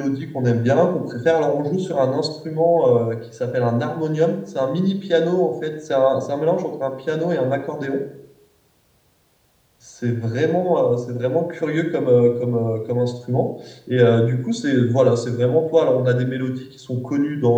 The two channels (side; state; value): both; identical; correlation 1.00